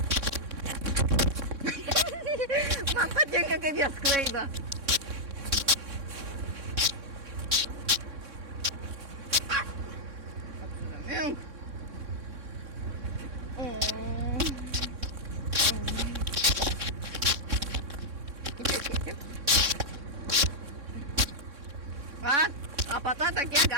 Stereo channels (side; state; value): left; late; 3.6 ms